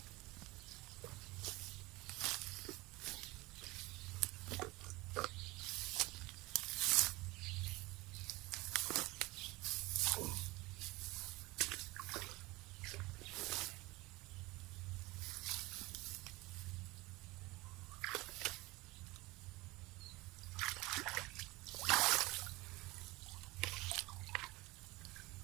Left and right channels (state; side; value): quieter; left; 21.9 dB